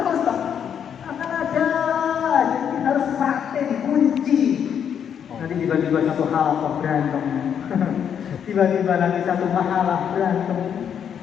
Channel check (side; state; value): right; quieter; 8.3 dB